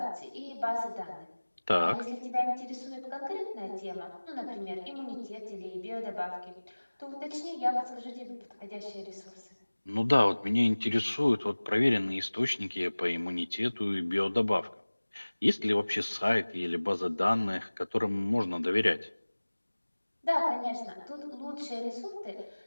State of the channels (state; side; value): inverted; both; correlation -1.00